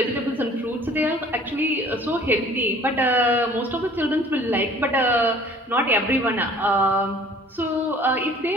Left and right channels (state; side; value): normal; both; correlation 0.51